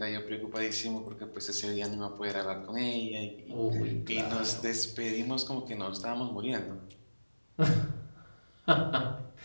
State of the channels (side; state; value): both; inverted; correlation -1.00